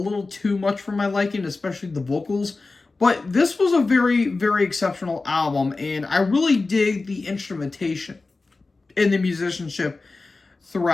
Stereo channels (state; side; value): quieter; right; 3.7 dB